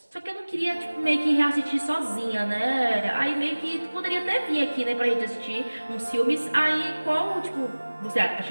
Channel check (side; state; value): both; inverted; correlation -1.00